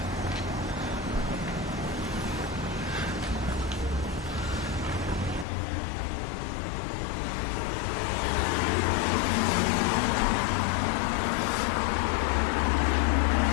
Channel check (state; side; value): drops out; right; at 5.5 s